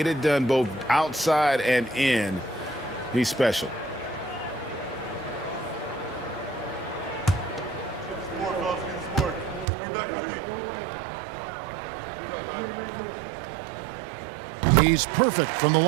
it done both outside and in. He's special. He's perfect from the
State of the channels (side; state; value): left; drops out; at 9.7 s